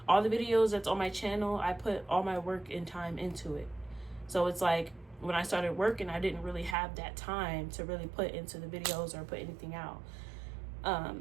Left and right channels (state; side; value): drops out; left; at 6.8 s